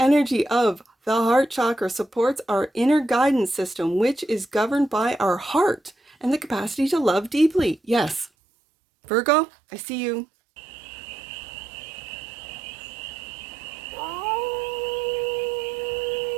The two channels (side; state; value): left; drops out; at 8.3 s